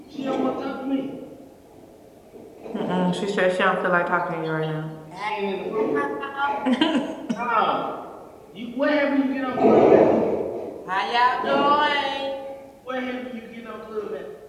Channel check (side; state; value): both; identical; correlation 1.00